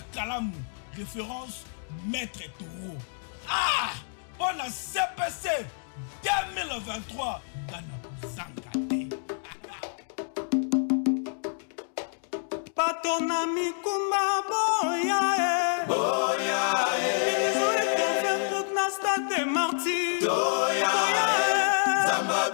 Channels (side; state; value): right; silent; digital silence